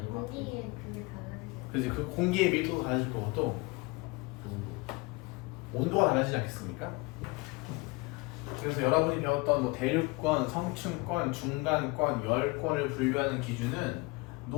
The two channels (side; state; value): right; quieter; 25.0 dB